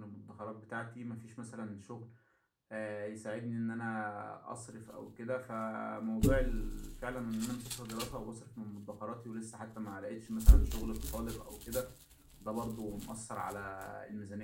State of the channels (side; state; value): both; identical; correlation 1.00